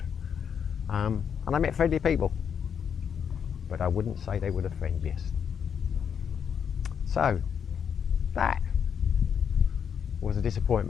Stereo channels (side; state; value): right; quieter; 7.6 dB